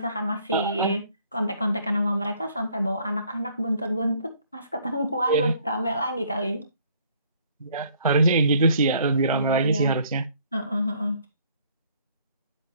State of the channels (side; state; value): both; inverted; correlation -0.62